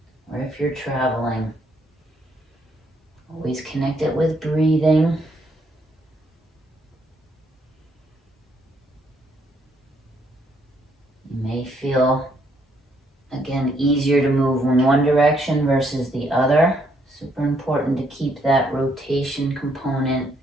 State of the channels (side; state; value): both; normal; correlation 0.71